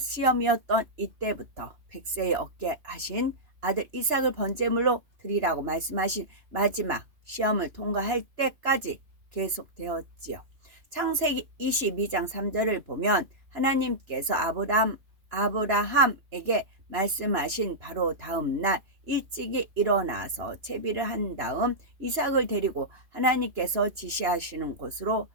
이때부터 100세에 얻게 하신 아들 이삭을 번제물로 드리라고 말씀하신 마지막 시험을 통과할 때까지 계속되었지요. 창세기 22장 3절을 보면 하나님께서 아브라함에게 말씀하신 바로 다음 날 일찍이 일어나서 채비를 한 다음 이삭을 데리고 하나님께서 지시하시는 곳으로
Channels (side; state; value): left; late; 2.9 ms